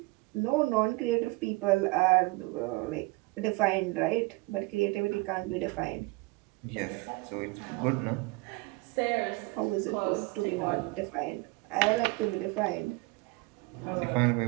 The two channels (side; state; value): left; quieter; 24.2 dB